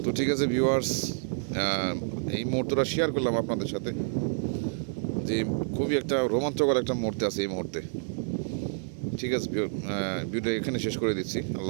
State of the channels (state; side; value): silent; left; 59 dB below the other